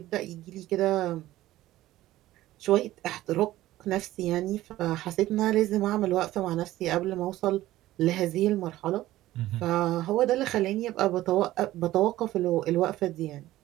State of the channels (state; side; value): quieter; left; 15.5 dB